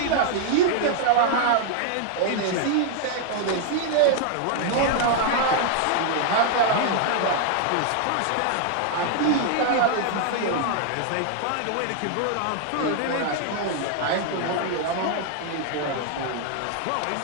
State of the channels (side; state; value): both; different; correlation 0.00